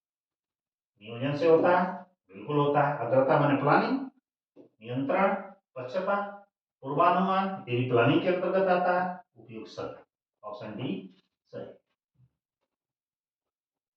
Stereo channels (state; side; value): identical; both; correlation 1.00